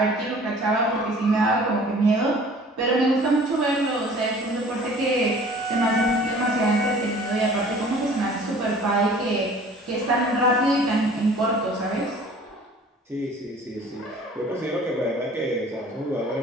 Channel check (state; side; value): normal; both; correlation 0.48